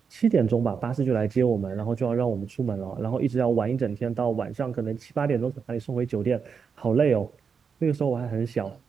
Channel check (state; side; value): quieter; left; 6.0 dB